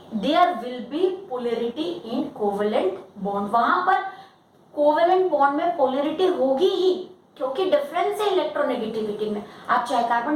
there will be polarity in covalent bond। वहां पर covalent bond में polarity होगी ही, क्योंकि difference है electronegativity में। आप चाहे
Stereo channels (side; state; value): both; identical; correlation 1.00